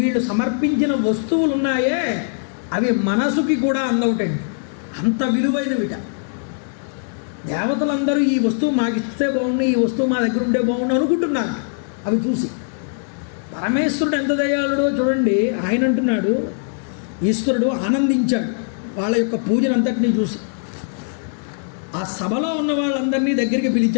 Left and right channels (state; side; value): silent; right; digital silence